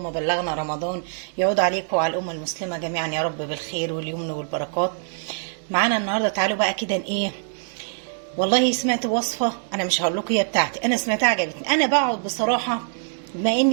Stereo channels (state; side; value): silent; left; digital silence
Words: بلغنا رمضان. يعود عليكم وعلى الأمة المسلمة جميعا يا رب بالخير واليمن والبركات. معانا النهاردة تعالوا بقى كده ايه، والله سمعت وصفة، انا مش هقول لكم هي بتاعتي، انا سمعتها عجبتني. انا بقعد بصراحة بما